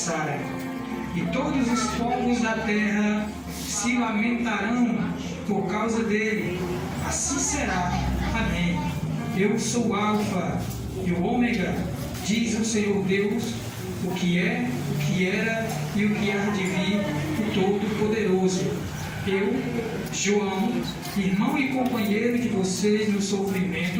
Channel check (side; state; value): both; identical; correlation 1.00